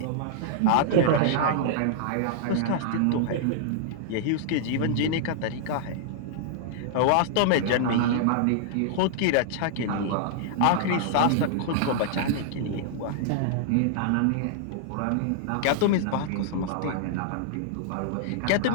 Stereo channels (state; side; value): different; both; correlation -0.01